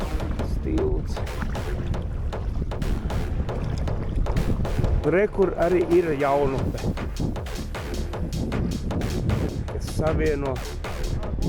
Tilts. Re, kur arī ir jaunupe, kas savieno.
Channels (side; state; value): both; identical; correlation 1.00